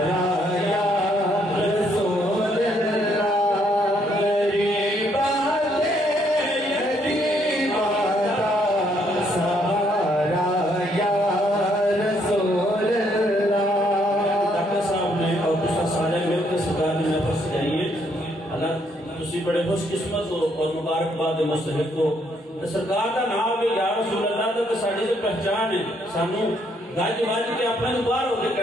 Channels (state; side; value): normal; both; correlation 0.70